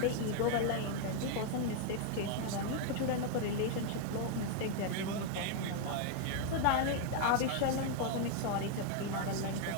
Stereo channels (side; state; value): both; different; correlation 0.00